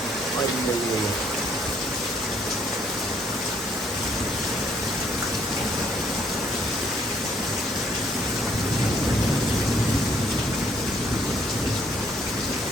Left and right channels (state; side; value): normal; both; correlation 0.66